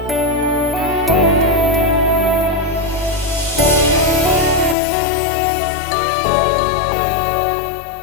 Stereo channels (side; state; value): right; drops out; at 4.8 s